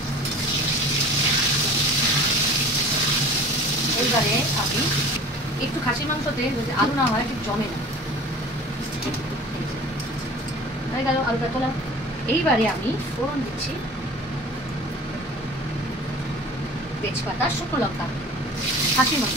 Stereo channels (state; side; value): normal; both; correlation 0.42